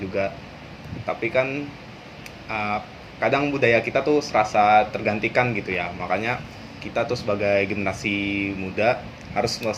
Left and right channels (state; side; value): identical; both; correlation 1.00